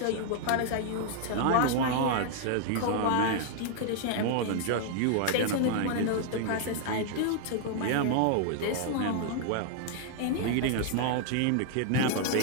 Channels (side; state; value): both; different; correlation 0.00